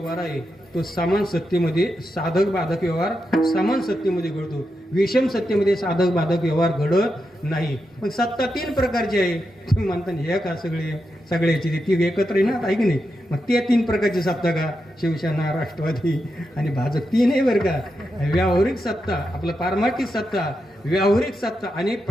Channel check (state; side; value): normal; both; correlation 0.86